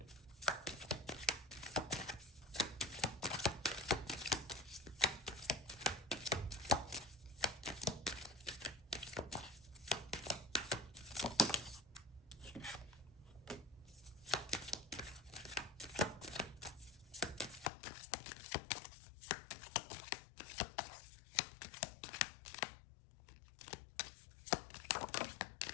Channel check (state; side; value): drops out; right; at 17.7 s